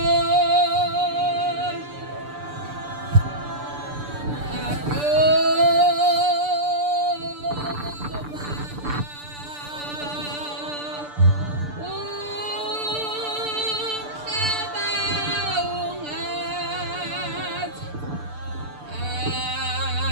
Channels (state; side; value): late; left; 6.8 ms